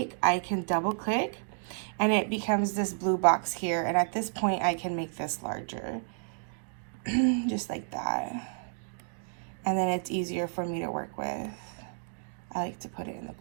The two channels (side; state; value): left; silent; digital silence